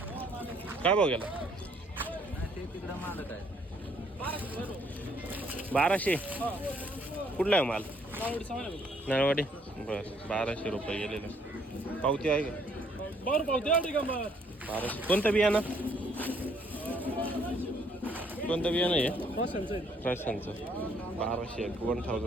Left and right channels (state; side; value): normal; both; correlation 0.65